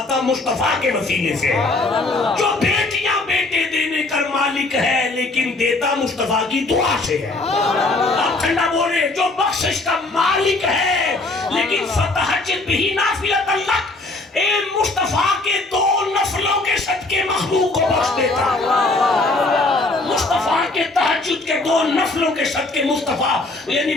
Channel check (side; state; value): right; quieter; 3.1 dB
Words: مصطفیٰ کے وسیلے سے ہے. جو بیٹیاں بیٹے دینے کر مالک ہے لیکن دیتا مصطفیٰ کی دعا سے ہے. آپ ٹھنڈا بولے. جو بخشش کا مالک ہے لیکن فتحجد بھی نافلۃ اللہ اے مصطفیٰ کے 2 نفلوں کے صدقے مخلوق کو بخش دیتا. مصطفیٰ کے تہجد کے 2 نفلوں کے صدقے مصطفیٰ یعنی